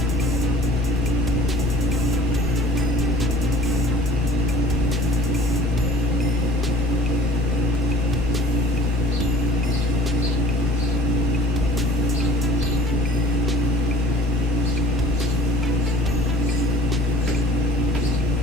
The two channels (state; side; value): normal; both; correlation 0.47